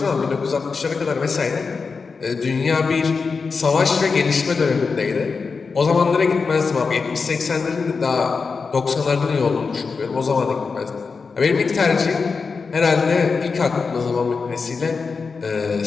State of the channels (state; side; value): quieter; right; 4.8 dB